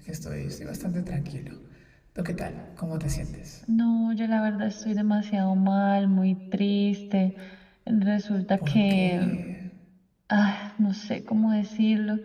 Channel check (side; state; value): both; identical; correlation 1.00